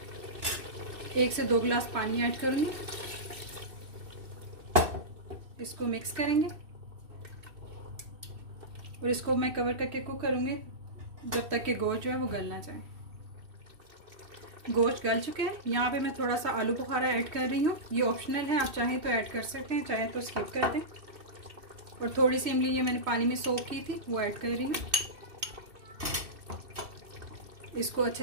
1 से 2 गिलास पानी ऐड करूँगी। इसको मिक्स करेंगे और इसको मैं कवर करके कुक करूँगी जब तक कि गोश्त जो है वो गल ना जाए। गोश्त गल चुके हैं। यहाँ पे मैं थोड़ा सा आलू बुखारा ऐड कर रही हूँ। ये ऑप्शनल है, आप चाहें तो ऐड कर सकते हैं, चाहें तो स्किप कर दें। और थोड़ी सी इमली ये मैंने पानी में सोक की थी वो ऐड कर रही हूँ। इसको अच्छे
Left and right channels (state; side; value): late; left; 2.6 ms